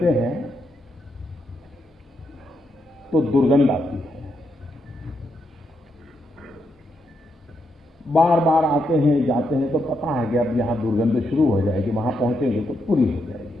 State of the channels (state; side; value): normal; both; correlation 0.81